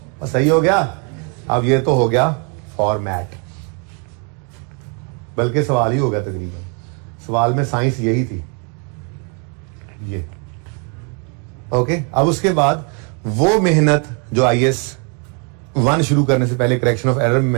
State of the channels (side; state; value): left; quieter; 36.8 dB